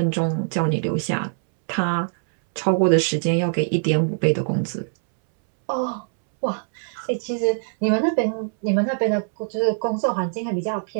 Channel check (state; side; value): silent; left; 64 dB below the other